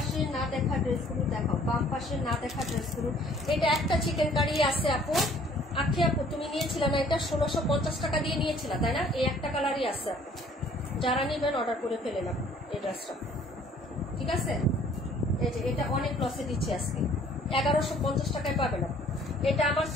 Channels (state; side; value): normal; both; correlation 0.57